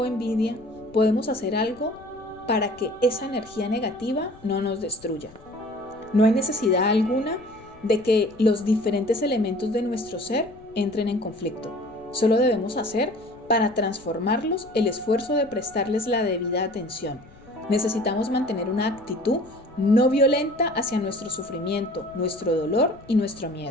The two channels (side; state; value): left; noise; rumble, 24 dB below the sound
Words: envidia, podemos hacer algo para que esa energía negativa no nos destruya. No hay necesidad alguna de que los diferentes elementos de nuestro ser entren en conflicto. Solo debemos hacer para transformarlos el esfuerzo de prestarles la debida atención. Necesitamos mantener una actitud no violenta hacia nuestro sufrimiento, nuestro dolor y nuestro